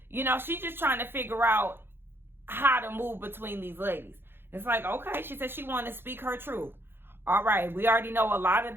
she's just trying to figure out how to move between these ladies. It's like, okay, she said she wanted to speak her truth. All right, we already know a lot of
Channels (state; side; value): late; left; 0.10 ms